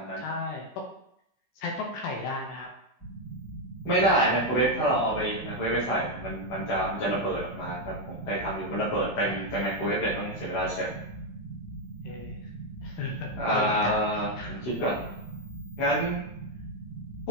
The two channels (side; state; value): right; late; 16 ms